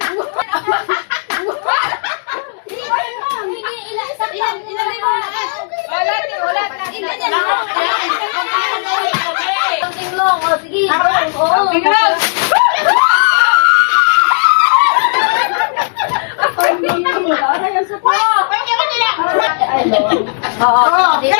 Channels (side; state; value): right; silent; 71 dB below the other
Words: Something long. O, sige. Oo.